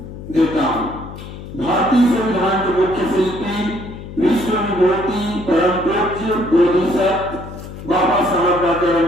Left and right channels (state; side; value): noise; left; hum, 12 dB below the sound